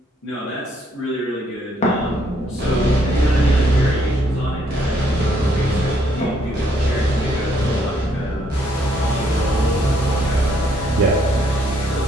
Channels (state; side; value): normal; both; correlation 0.70